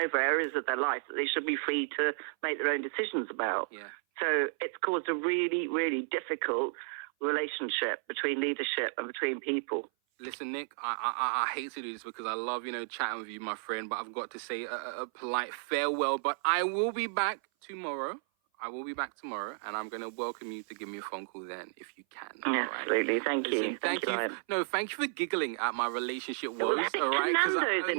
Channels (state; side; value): silent; left; 56 dB below the other